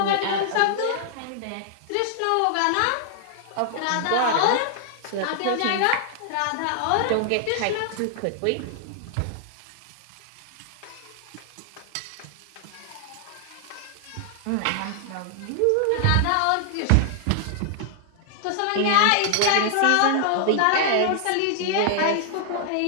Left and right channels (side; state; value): both; different; correlation -0.01